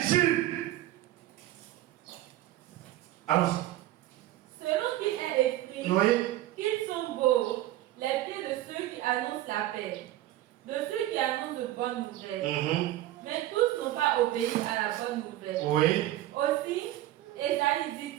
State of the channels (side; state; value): left; quieter; 14.7 dB